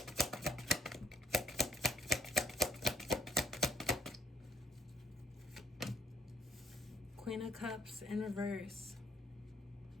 Queen of Cups in reverse.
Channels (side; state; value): both; normal; correlation 0.68